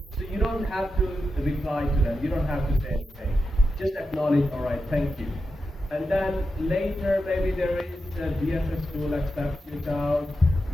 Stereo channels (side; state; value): both; normal; correlation 0.89